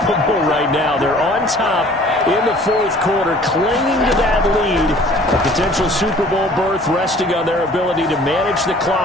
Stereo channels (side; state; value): both; normal; correlation 0.51